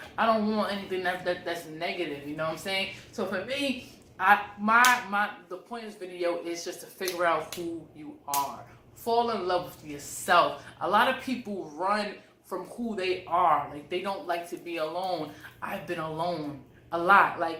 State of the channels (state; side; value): identical; both; correlation 1.00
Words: I don't want anything that's negative. You know what I'm saying? So for me, the point of this video is just to figure out who you are. Fall in love with yourself. A lot of people run from who they are. Like, they don't like to be alone. I've been alone a lot.